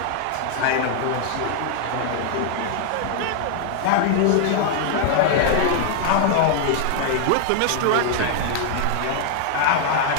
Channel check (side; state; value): both; different; correlation 0.00